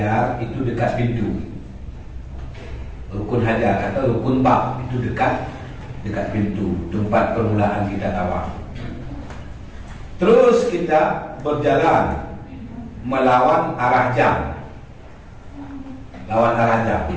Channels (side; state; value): both; identical; correlation 1.00